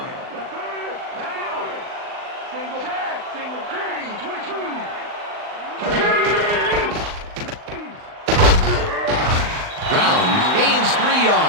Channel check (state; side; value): late; left; 39 ms